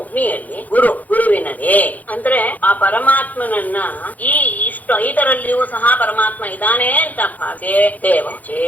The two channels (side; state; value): right; late; 0.079 ms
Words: ಗುರುವಿನಲ್ಲಿ ಅಂದ್ರೆ ಆ ಪರಮಾತ್ಮನನ್ನ ಇದರಲ್ಲಿಯೂ ಸಹ ಪರಮಾತ್ಮ ಇದ್ದಾನೆ ಅಂತ ಭಾವಿಸಿ